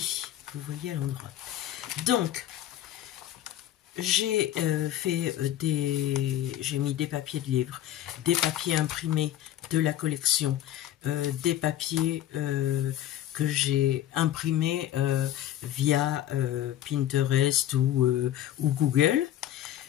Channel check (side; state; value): right; quieter; 12.4 dB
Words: vous voyez à l'endroit. Donc j'ai j'ai mis des papiers de livres, des papiers imprimés de la collection, des papiers que j'ai imprimés via Pinterest ou Google.